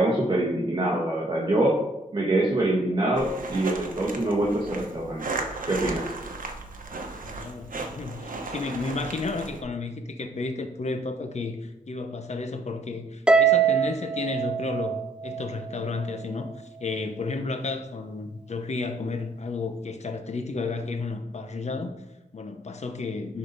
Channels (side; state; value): both; normal; correlation 0.64